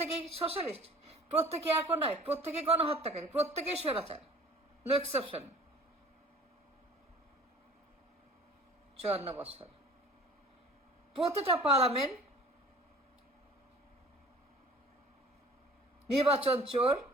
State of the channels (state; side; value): normal; both; correlation 0.47